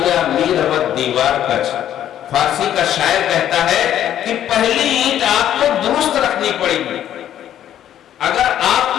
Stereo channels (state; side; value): quieter; right; 11.0 dB